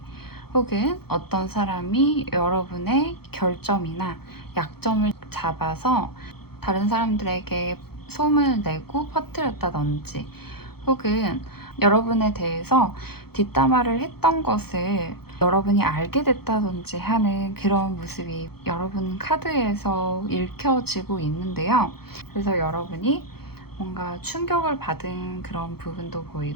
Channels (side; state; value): right; late; 0.96 ms